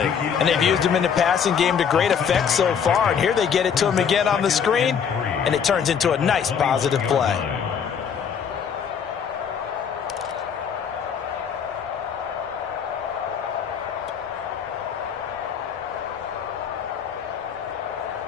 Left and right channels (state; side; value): quieter; right; 7.3 dB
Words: And they've used him in the passing game to great effect so far. And here they get it to him again on the screen, and it turns into a nice positive play.